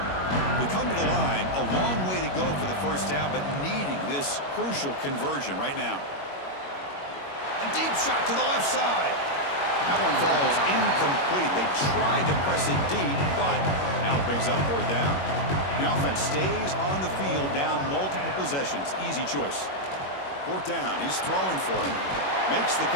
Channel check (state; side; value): late; right; 21 ms